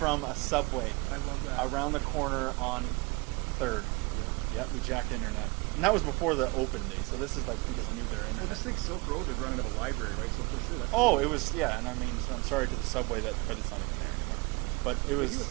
a Subway. I love that. Around the corner on 3rd. Yeah. Yep, we jacked internet. And that was before the open day, so this is like we just knew their internet. Well, just think Silk Road was running out of a library, right? So for sure that's... Oh, it was, and I mean, so I'm sorry to the Subway, but it's not even there anymore. Yeah. But it was... Maybe it was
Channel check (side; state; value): left; quieter; 27.4 dB